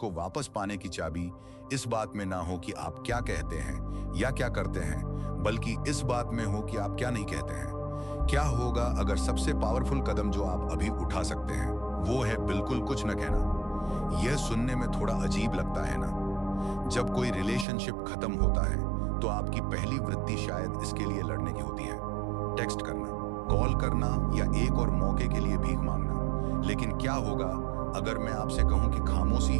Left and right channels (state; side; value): drops out; left; at 17.7 s